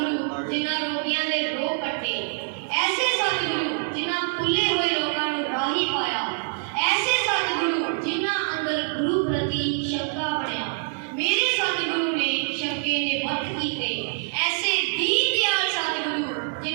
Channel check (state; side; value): silent; left; digital silence